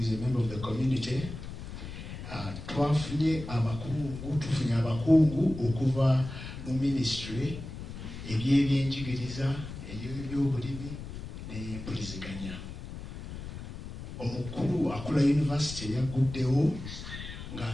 a member of the community. Tufunye abakungu okuva mu ministry ebyebyenjigiriza, ebyobulimi n'empuliziganya. Omukulu akula university yaguddewo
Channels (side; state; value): left; noise; rumble, 10 dB below the sound